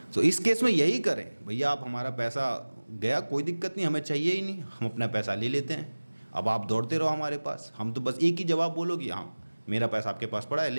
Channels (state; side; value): inverted; both; correlation -1.00